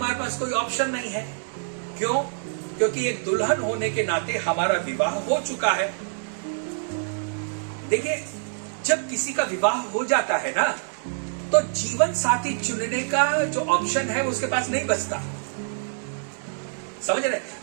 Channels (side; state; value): left; silent; 61 dB below the other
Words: पास कोई ऑप्शन नहीं है। क्यों? क्योंकि एक दुल्हन होने के नाते हमारा विवाह हो चुका है। देखिए, जब किसी का विवाह हो जाता है ना, तो जीवन साथी चुनने का जो ऑप्शन है उसके पास नहीं बचता। समझ रहे?